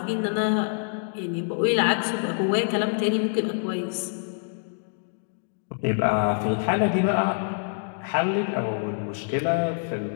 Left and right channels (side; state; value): right; silent; digital silence